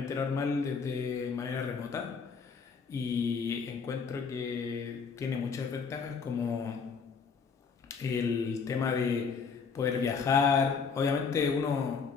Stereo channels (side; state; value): right; quieter; 5.6 dB